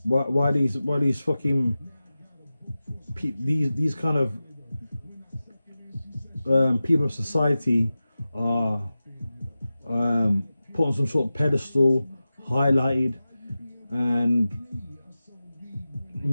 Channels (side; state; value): both; inverted; correlation -0.95